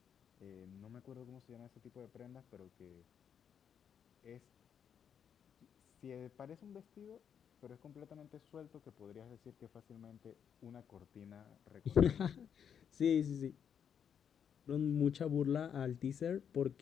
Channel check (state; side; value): quieter; right; 8.0 dB